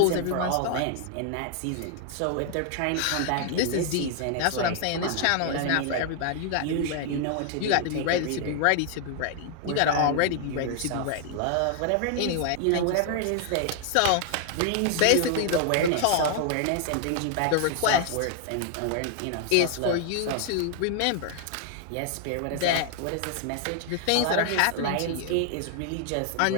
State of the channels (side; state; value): both; different; correlation 0.00